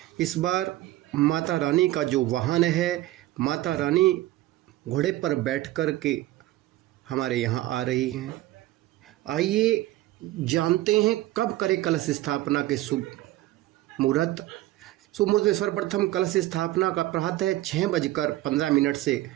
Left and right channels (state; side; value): quieter; left; 16.1 dB